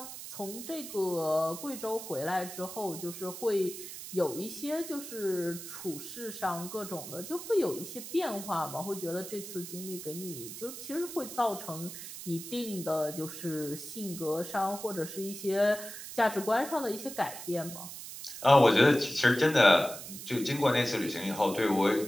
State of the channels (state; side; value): noise; right; hiss, 10 dB below the sound